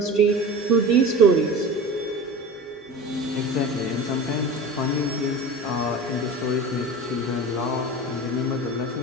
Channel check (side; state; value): both; normal; correlation 0.33